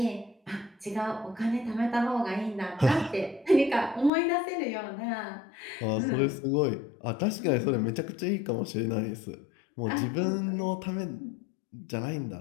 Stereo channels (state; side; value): drops out; right; at 4.1 s